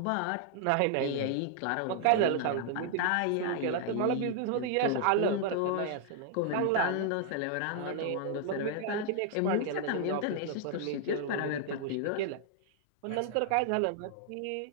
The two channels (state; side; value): different; both; correlation -0.01